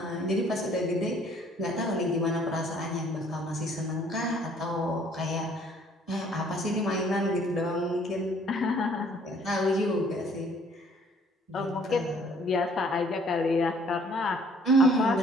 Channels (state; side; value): normal; both; correlation 0.59